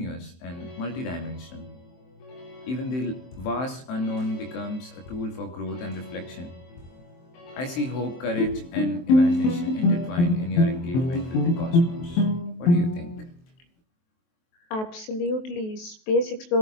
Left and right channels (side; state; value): right; late; 23 ms